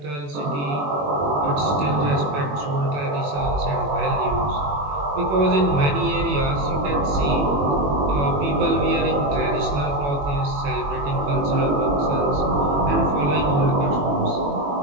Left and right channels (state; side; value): late; left; 21 ms